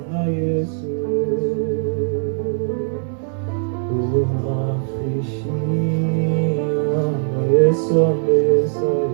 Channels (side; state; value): left; silent; digital silence